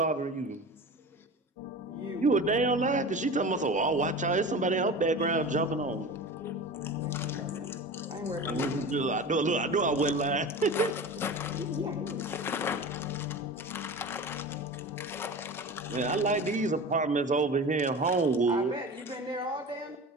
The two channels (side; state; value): both; normal; correlation 0.33